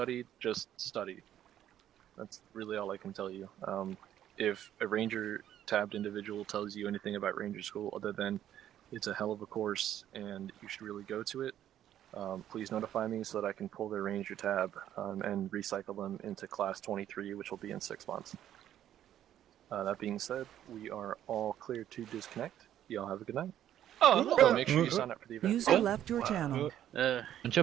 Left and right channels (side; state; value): left; quieter; 11.2 dB